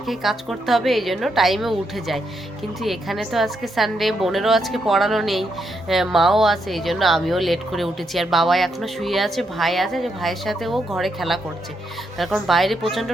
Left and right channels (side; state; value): both; normal; correlation 0.80